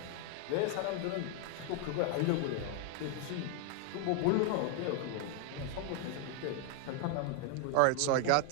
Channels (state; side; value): different; both; correlation 0.00